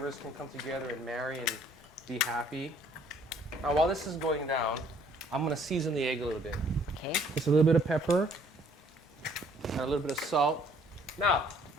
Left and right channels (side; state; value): both; normal; correlation 0.61